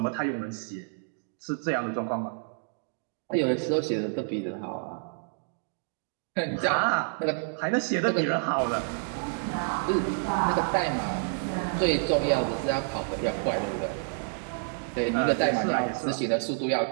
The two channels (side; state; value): left; silent; digital silence